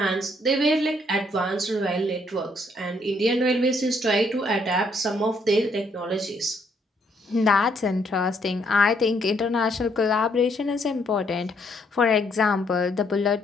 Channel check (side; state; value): both; normal; correlation 0.70